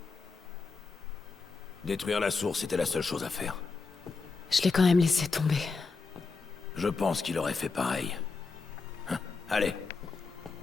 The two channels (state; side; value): quieter; right; 4.4 dB